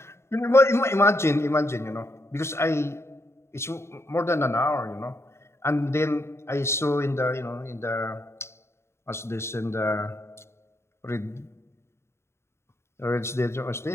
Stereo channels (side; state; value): right; late; 0.13 ms